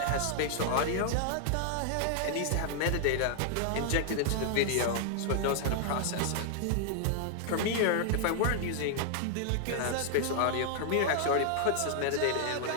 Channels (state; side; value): different; both; correlation -0.01